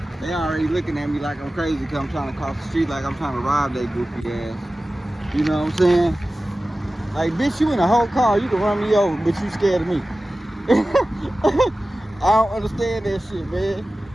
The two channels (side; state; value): both; normal; correlation 0.96